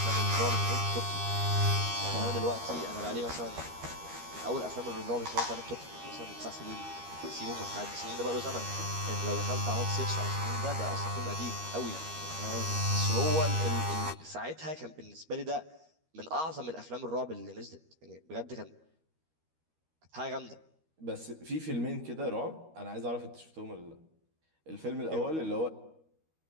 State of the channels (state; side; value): late; left; 13 ms